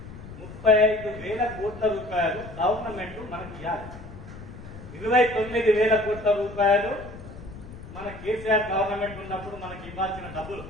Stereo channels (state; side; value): noise; left; rumble, 14 dB below the sound